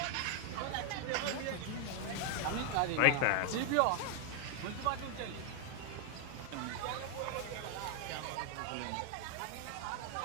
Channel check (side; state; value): both; different; correlation 0.00